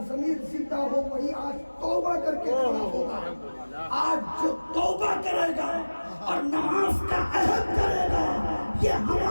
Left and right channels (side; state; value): both; inverted; correlation -1.00